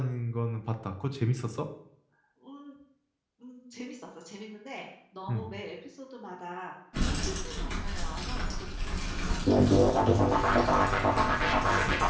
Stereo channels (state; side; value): identical; both; correlation 1.00